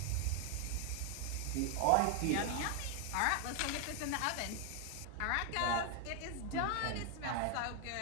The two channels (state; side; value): different; both; correlation 0.00